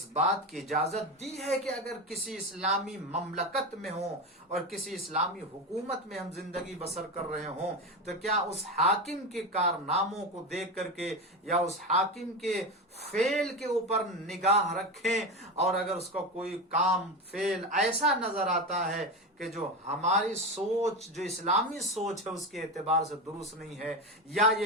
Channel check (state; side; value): normal; both; correlation 0.19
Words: بات کی اجازت دی ہے کہ اگر کسی اسلامی مملکت میں ہوں اور کسی اسلامی حکومت میں ہم زندگی بسر کر رہے ہوں تو کیا اس حاکم کے کارناموں کو دیکھ کر کے یا اس حاکم کے فعل کے اوپر نگاہ رکھیں، اور اگر اس کا کوئی کام فعل ایسا نظر آتا ہے کہ جو ہماری سوچ جو اسلامی سوچ ہے اس کے اعتبار سے درست نہیں ہے، یا